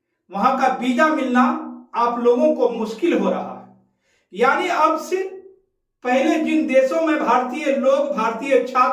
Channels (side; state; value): both; identical; correlation 1.00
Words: वहां का वीजा मिलना आप लोगों को मुश्किल हो रहा है। यानी अब से पहले जिन देशों में भारतीय लोग, भारतीय